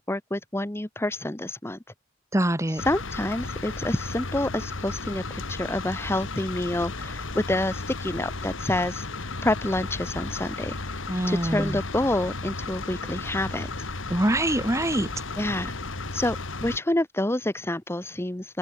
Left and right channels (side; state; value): both; normal; correlation 0.73